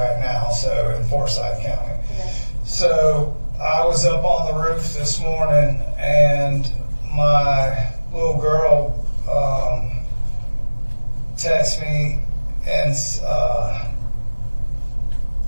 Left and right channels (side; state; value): both; inverted; correlation -1.00